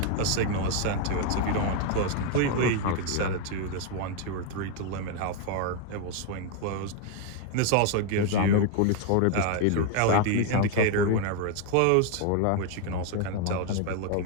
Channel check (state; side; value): different; both; correlation 0.01